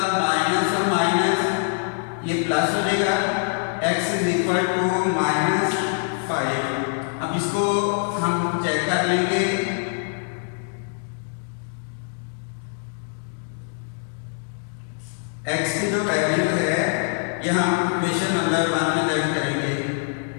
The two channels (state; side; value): silent; right; 58 dB below the other